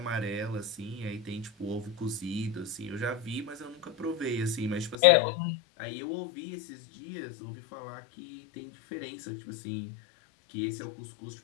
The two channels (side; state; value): right; drops out; at 5.0 s